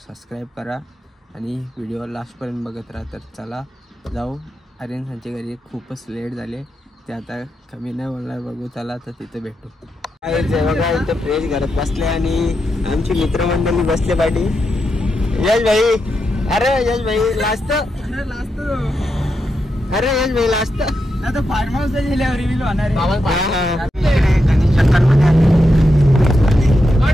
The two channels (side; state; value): both; normal; correlation 0.85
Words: सबस्क्राईब करा आणि व्हिडिओ लास्टपर्यंत बघत राहा। तर चला जाऊ। आर्यनच्या घरी खूपच लेट झाले, ते आता कमी नाही बोलणार, बघू चला तर तिथे भेटू। बघा इथं फ्रेश घरात बसले आणि आमची मित्रमंडळी बसले पाठी। यश भाई, अरे यश भाई लास्ट, अरे यश भाई लास्ट आता फार्म हाऊसला गेल्यावर रिव्हील होणार आहे।